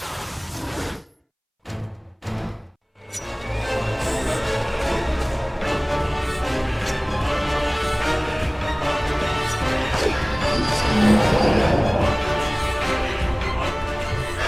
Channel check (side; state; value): both; identical; correlation 1.00